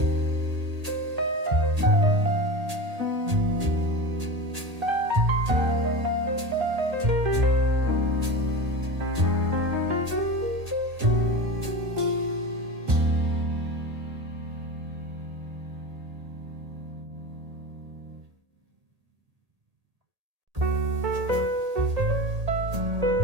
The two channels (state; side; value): late; left; 1.8 ms